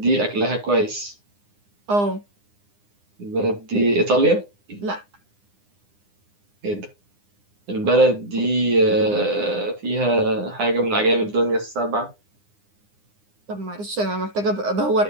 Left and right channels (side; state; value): left; late; 9.8 ms